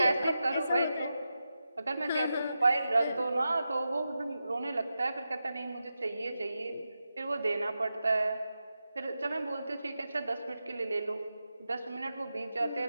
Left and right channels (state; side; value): inverted; both; correlation -0.90